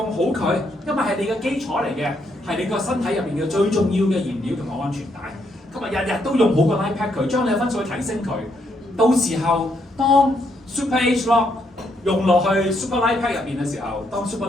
好佢，因為係你嘅基礎嚟嘅，係你個身體入邊嘅最重要嘅燃料同埋安全帶。今日日日都用好個 Life Pack 佢，將你嘅分數去提升佢。到時候當 Super HLOC 用落去 Super Life Pack 入邊嘅時候，當 Super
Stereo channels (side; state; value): both; normal; correlation 0.75